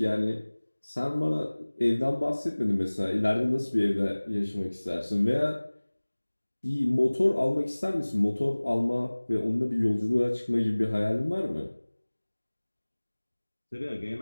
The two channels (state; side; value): inverted; both; correlation -1.00